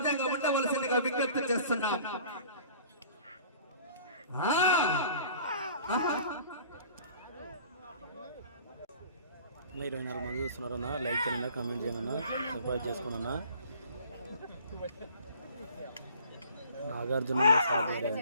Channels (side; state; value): both; inverted; correlation -0.49